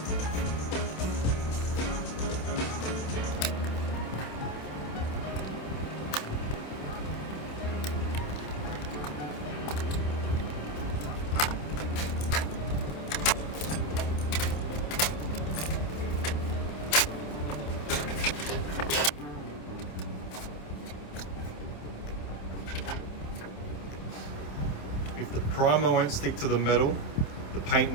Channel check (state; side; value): late; right; 27 ms